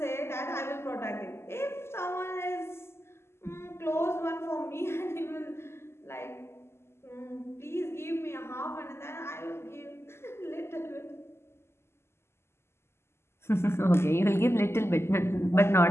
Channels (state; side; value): late; right; 0.12 ms